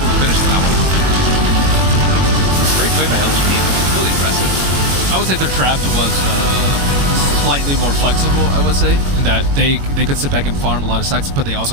to finish that one. Great play by LGD. Really impressive. I would say their draft was slightly more flexible, I would say, in that they could sit back and farm a lot of stacks, but they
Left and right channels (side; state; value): left; late; 21 ms